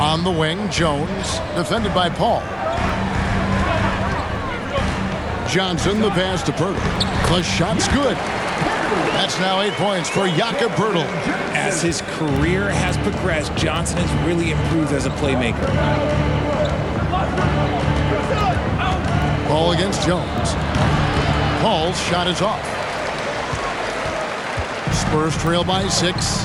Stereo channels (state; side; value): identical; both; correlation 1.00